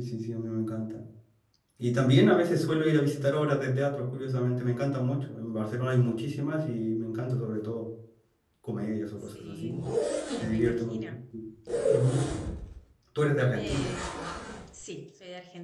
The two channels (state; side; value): identical; both; correlation 1.00